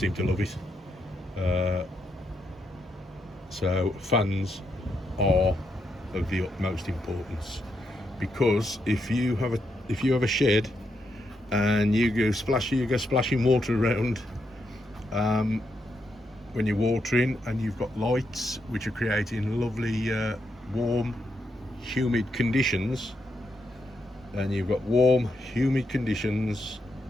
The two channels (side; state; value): both; normal; correlation 0.81